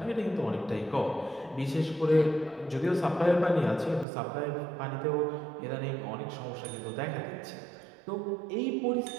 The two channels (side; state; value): left; drops out; at 4.0 s